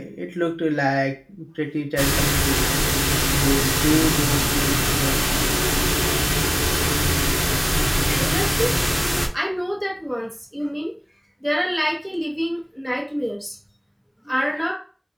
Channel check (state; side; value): identical; both; correlation 1.00